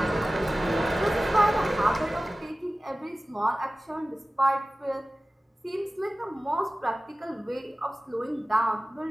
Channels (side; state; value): both; normal; correlation 0.96